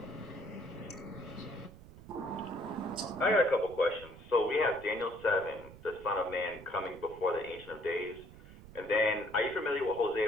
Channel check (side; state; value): right; noise; rumble, 18 dB below the sound